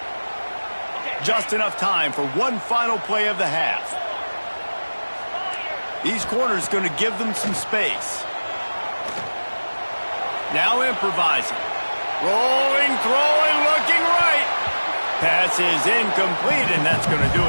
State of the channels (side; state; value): both; inverted; correlation -1.00